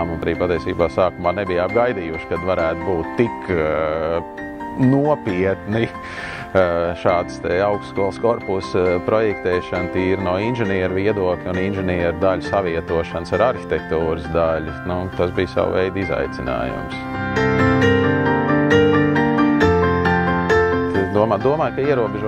un arī patiesībā sākumā nebija apgaidījuši, kad varētu būt tik nopietni šāds augstskolas korpusa projektēšana tīri no inženieru viedokļa un inženieru daļu savietošanas ar arhitektūras daļu. Tas bija savu veidu izaicinājums. Domāju, ka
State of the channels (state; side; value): identical; both; correlation 1.00